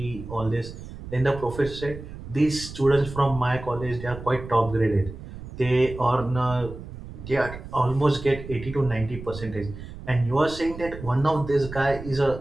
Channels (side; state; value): right; noise; rumble, 12 dB below the sound